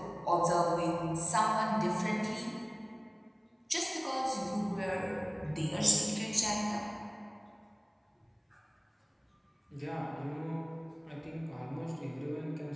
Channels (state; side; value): identical; both; correlation 1.00